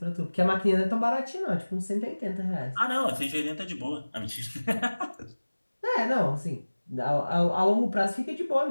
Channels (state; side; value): inverted; both; correlation -1.00